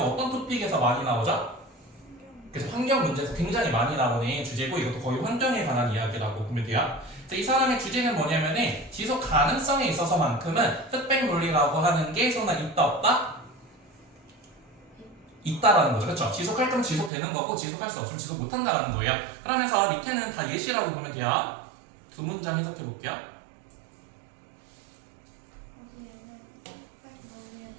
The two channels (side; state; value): left; drops out; at 17.1 s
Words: 어떤 토픽에서 많이 나오죠? 그래서 환경 문제에서 굉장히 많이 나오는 주제고 이것도 거의 환경에 관한 이야기라고 보면 돼요. 이 사람의 주제는 뭐냐면은 지속 가능성에 있어서만큼은 흑백 논리라고 하는 게 소나 있다 없다? 있다라는 거죠. 그렇죠? 지속할 거면 지속되는 거고 지속할 수 없으면 지속 못한다라는 거예요. 그러면서 밑에는 다 예시라고 보면 돼요. 두 문장 해석해 볼게요. 거기에는 흑백 논리에